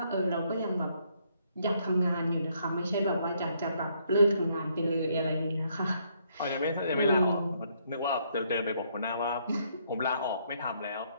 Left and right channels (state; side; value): inverted; both; correlation -0.71